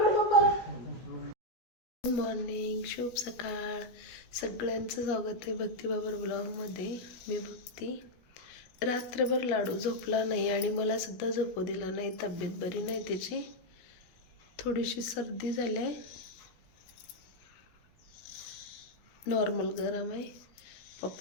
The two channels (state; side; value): late; right; 17 ms